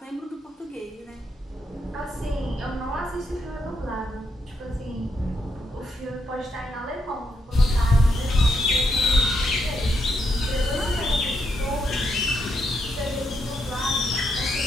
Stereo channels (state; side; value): normal; both; correlation 0.79